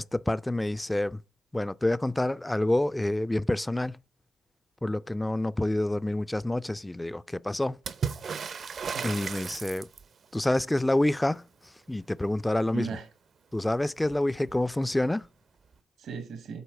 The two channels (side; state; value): both; normal; correlation 0.98